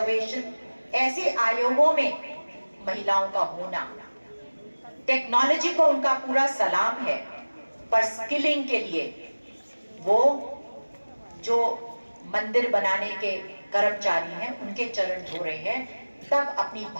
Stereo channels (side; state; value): both; inverted; correlation -1.00